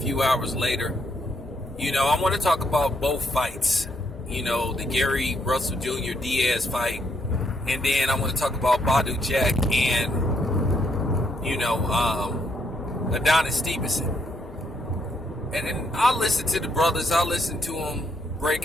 hours later. I want to talk about both fights. The Gary Russell Jr. Diaz fight. And then I want to talk about Badu Jack and, Adonis Stevenson. And then I'll listen to the brothers. I'll listen to them, break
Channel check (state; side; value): normal; both; correlation 0.74